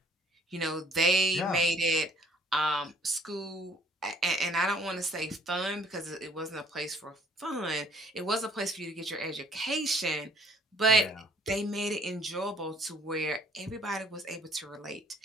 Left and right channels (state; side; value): normal; both; correlation 0.58